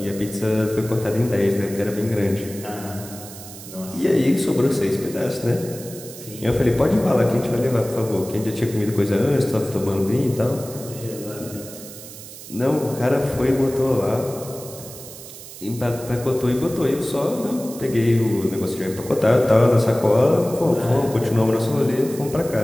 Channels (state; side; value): noise; right; hiss, 15 dB below the sound